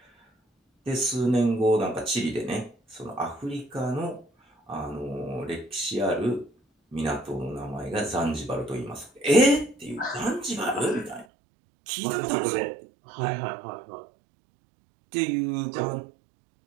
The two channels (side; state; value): left; drops out; at 11.2 s